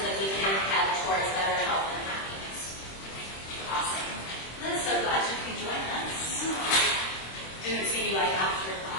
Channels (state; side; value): late; right; 26 ms